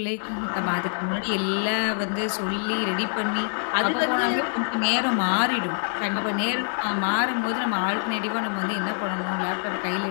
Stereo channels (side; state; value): right; silent; digital silence